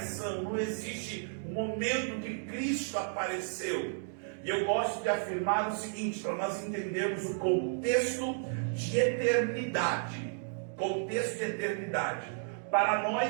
não existe um momento que Cristo apareceu. E eu gosto de afirmar o seguinte, para nós entendermos o contexto de eternidade. Contexto de eternidade. Para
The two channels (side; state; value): left; silent; digital silence